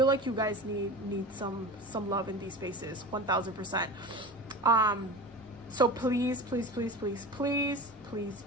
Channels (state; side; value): normal; both; correlation 0.32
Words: like you guys need some love in these spaces, 1000%. So please